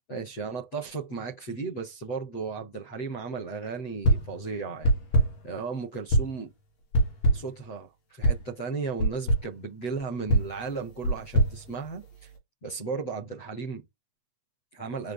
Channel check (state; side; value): late; right; 8.2 ms